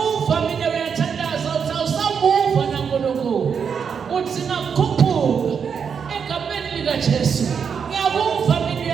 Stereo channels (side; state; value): left; quieter; 6.7 dB